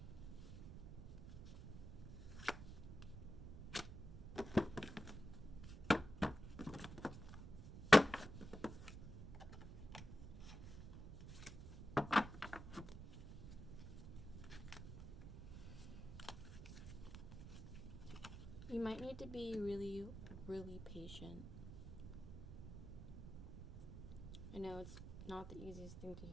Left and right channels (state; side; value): noise; right; rumble, 10 dB below the sound